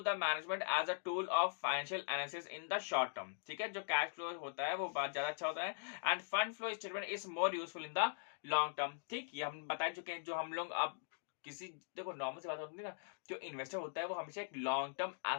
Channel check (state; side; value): silent; right; digital silence